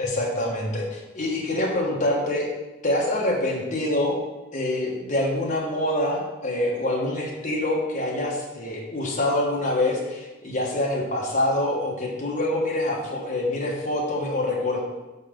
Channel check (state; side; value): normal; both; correlation 0.13